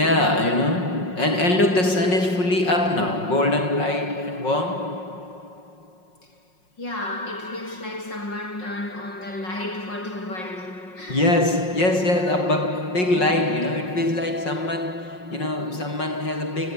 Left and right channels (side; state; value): right; late; 5.5 ms